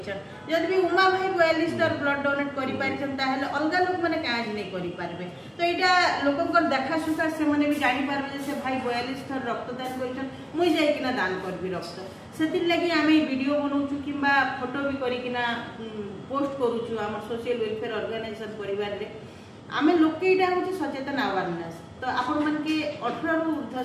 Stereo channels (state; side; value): identical; both; correlation 1.00